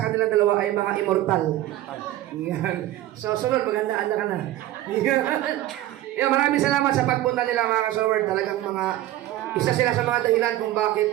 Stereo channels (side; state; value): left; quieter; 14.5 dB